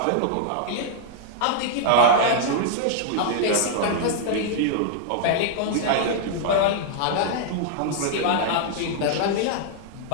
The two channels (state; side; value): different; both; correlation -0.01